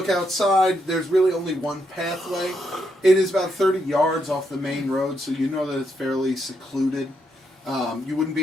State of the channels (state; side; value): normal; both; correlation 0.79